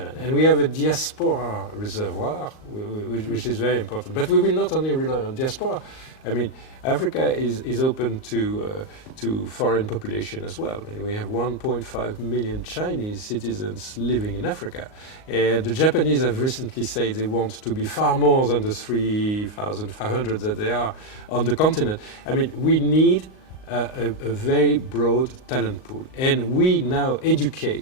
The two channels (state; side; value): late; right; 38 ms